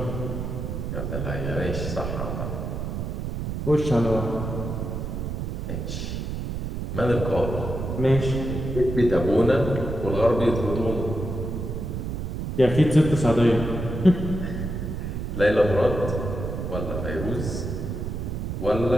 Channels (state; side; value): noise; right; rumble, 4 dB below the sound